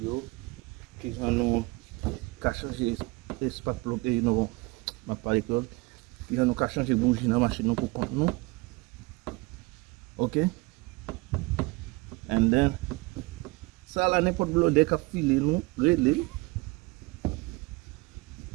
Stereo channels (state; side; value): quieter; left; 24.7 dB